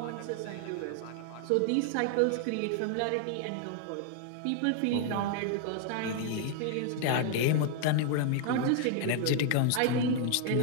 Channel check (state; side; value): different; both; correlation 0.00